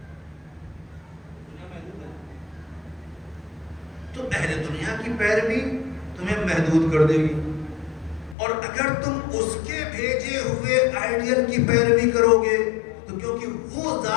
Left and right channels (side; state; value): right; drops out; at 8.3 s